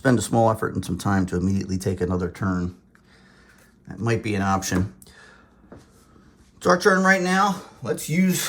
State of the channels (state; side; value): identical; both; correlation 1.00